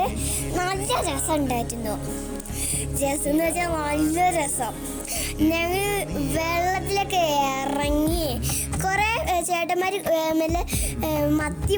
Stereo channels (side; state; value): both; identical; correlation 1.00